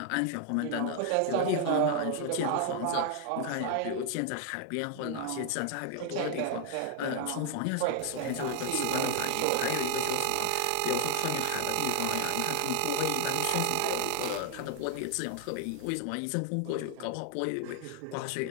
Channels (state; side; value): different; both; correlation 0.00